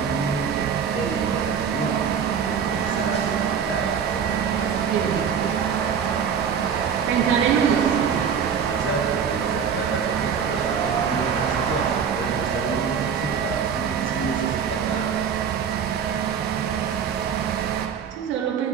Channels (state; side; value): quieter; left; 7.2 dB